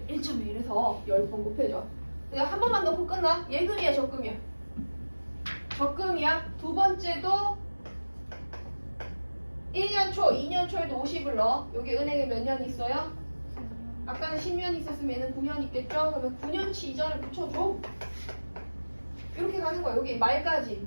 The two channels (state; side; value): inverted; both; correlation -1.00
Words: 1.1 해서 10번 곱해줘. 그냥 한 번만 넣고 끝나? 예금이야, 적금이야? 적금이야. 두 번째도 1년 초, 2년 초에도 50을 넣어. 여기 은행에 몇 년 있어요? 아까는 10년 있었으면 얘는 9년 있겠죠? 그러면 9년치 이자를 붙여줘. 이렇게 가는 거야. 여기 말까지,